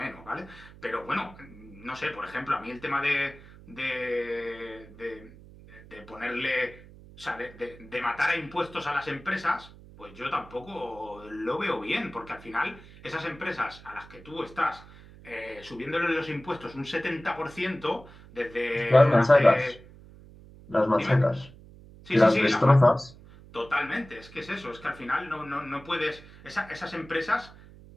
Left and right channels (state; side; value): noise; right; hum, 20 dB below the sound